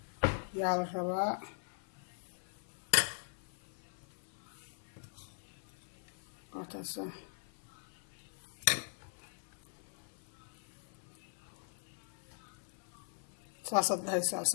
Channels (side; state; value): right; silent; 50 dB below the other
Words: yaa la rabaa taasa saas dhahaysa